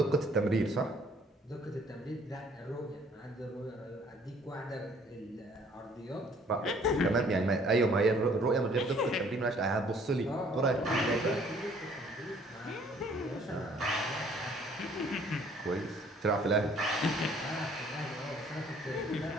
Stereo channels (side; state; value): both; normal; correlation 0.59